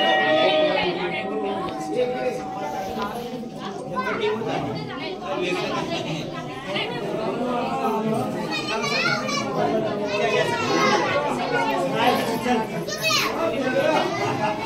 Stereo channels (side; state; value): both; identical; correlation 1.00